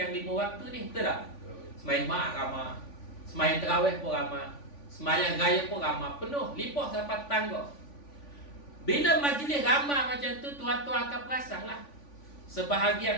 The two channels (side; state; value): right; late; 3.5 ms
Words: 5 waktu ni, betul tak? Semayang Jumaat ramai, semayang Terawih pun ramai, semayang Raya pun ramai, penuh, limpah sampai tangga. Bila majlis ramai macam tu, tuan-tuan akan perasan lah.